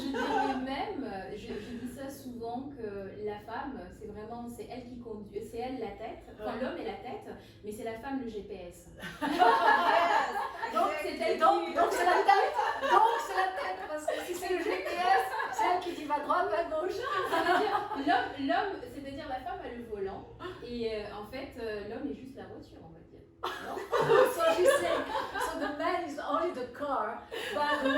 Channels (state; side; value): identical; both; correlation 1.00